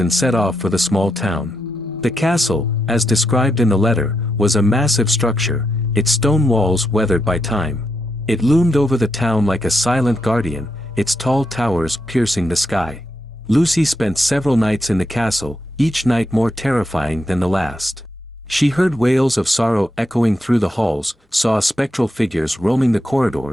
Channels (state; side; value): normal; both; correlation 0.83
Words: set off for the small town. The castle, as described in the letter, was a massive structure, its stone walls weathered by time. It loomed over the town like a silent guardian, its tall towers piercing the sky. Lucy spent several nights in the castle, each night more terrifying than the last. She heard wails of sorrow echoing through the halls, saw spectral figures roaming the